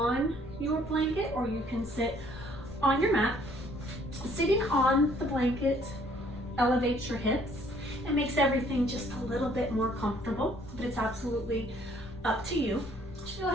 your blanket, or you can sit on your mat. Sitting on the blanket elevates your hips and makes everything just a little bit more comfortable, but it's absolutely up to you. Just go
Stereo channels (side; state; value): left; noise; rumble, 15 dB below the sound